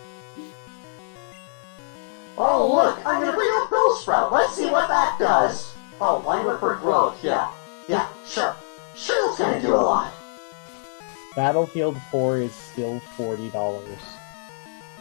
Oh look, I'm gonna bring up Bellsprout. Let's see what that does. Oh, line for growth, yeah. Yeah, sure. Sure, that's gonna do a lot. Battlefield 4 is still $40.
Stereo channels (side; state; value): right; silent; digital silence